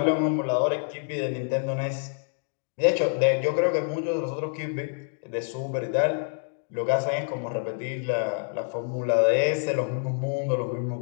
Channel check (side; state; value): right; silent; 57 dB below the other